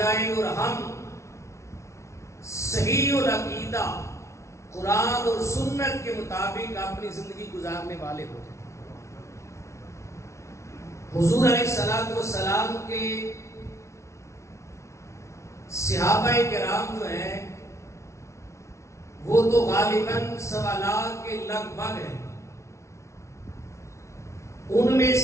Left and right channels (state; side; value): late; right; 0.14 ms